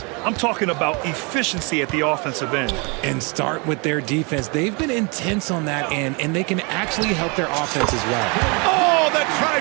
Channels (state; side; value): quieter; left; 31.3 dB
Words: I'm talking about efficiency at the offensive end. And start with their defense. They've been intense on that end, and they can actually help their offense as well. Oh, the